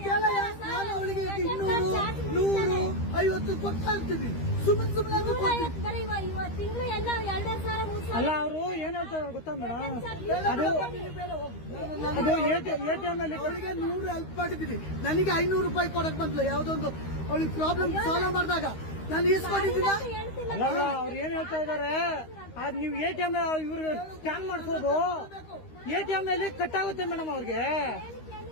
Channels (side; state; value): right; late; 13 ms